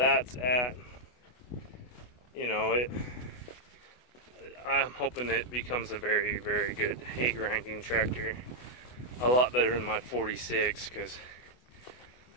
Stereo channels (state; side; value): late; right; 24 ms